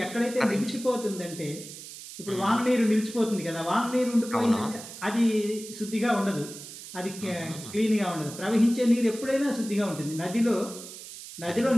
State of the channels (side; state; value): right; noise; hiss, 13 dB below the sound